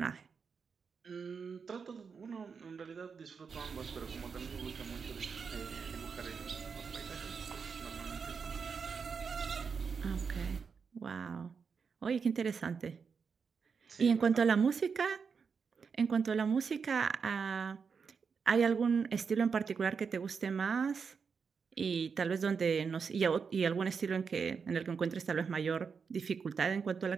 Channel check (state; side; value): quieter; left; 5.8 dB